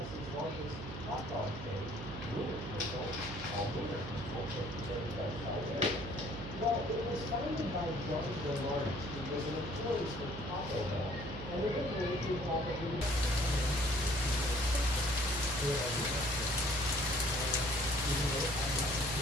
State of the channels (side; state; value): right; noise; hum, 9 dB below the sound